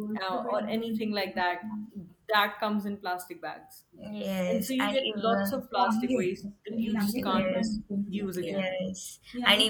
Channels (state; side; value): identical; both; correlation 1.00